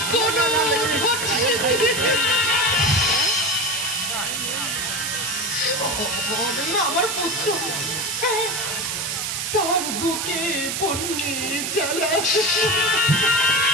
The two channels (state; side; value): noise; right; hiss, 2 dB below the sound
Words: কোন আমার পুত্র, তার বুকে বন্যে জ্বালা,